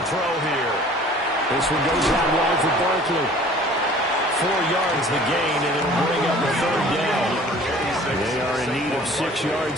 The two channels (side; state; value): both; normal; correlation 0.49